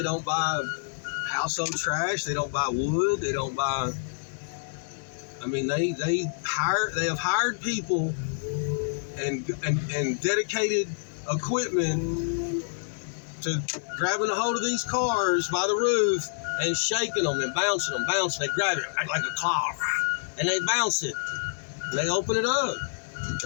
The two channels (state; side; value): silent; right; 60 dB below the other